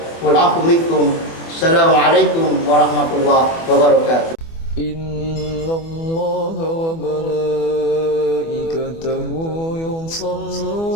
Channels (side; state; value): right; late; 24 ms